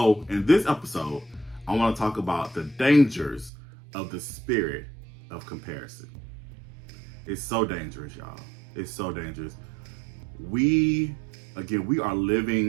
in this episode, I want to talk about the dangers of the spirit of comparison. It's so dangerous, y'all. It's so dangerous. We are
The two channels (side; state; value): left; drops out; at 3.5 s